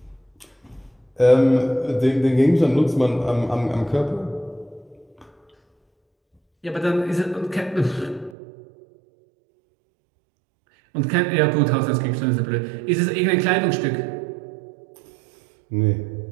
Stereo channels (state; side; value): drops out; left; at 8.3 s